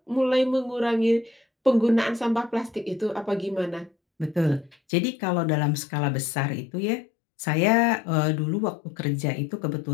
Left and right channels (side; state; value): right; drops out; at 4.8 s